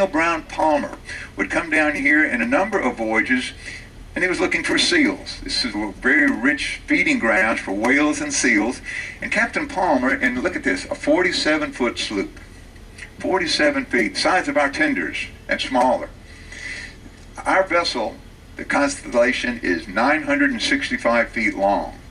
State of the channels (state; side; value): identical; both; correlation 1.00